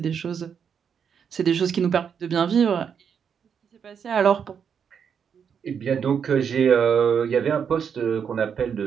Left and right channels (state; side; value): quieter; left; 7.3 dB